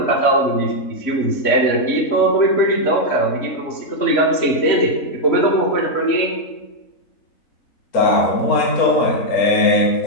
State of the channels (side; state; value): right; late; 3.1 ms